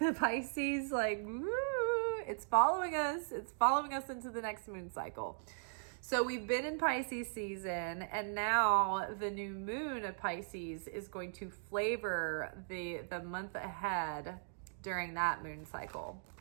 Pisces, it's following us. It's following us into the next moon cycle. So we've been in Pisces season, and now the new moon of Pisces is going to flavor the month ahead during that moon cycle.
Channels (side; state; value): left; silent; digital silence